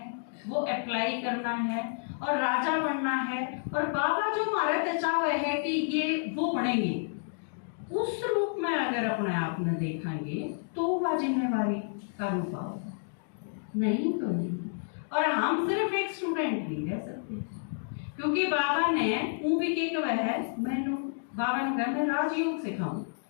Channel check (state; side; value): silent; right; digital silence